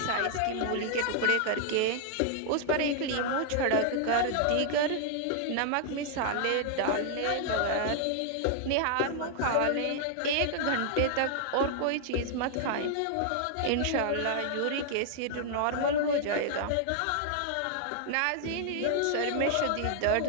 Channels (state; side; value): different; both; correlation 0.00